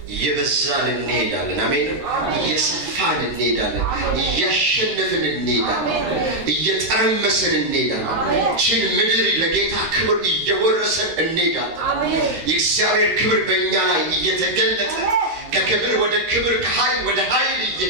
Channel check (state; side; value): late; left; 13 ms